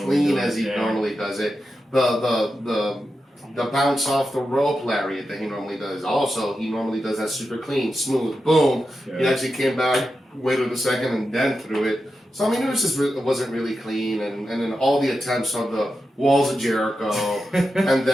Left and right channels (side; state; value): both; normal; correlation 0.90